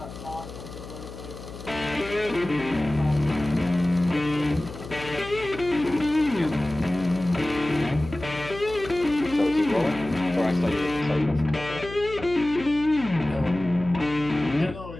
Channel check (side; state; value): left; noise; hum, 13 dB below the sound